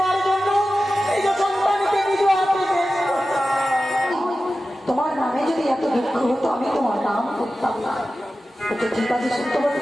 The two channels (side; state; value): both; normal; correlation 0.94